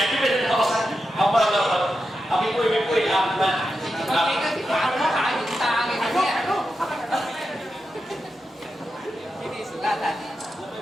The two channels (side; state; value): both; normal; correlation 0.89